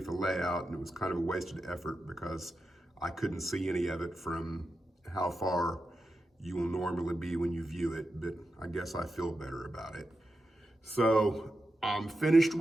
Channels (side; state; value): both; normal; correlation 0.89